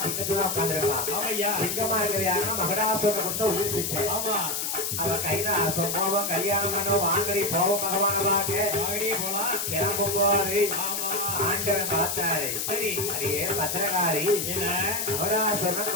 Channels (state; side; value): noise; left; hiss, 1 dB below the sound